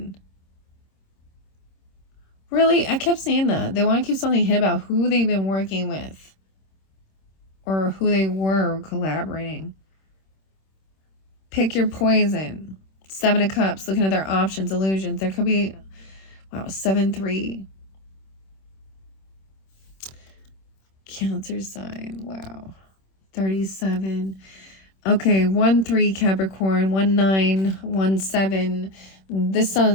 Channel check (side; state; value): right; late; 26 ms